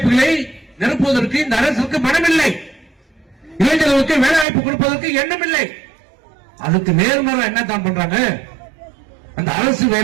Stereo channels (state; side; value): drops out; left; at 4.5 s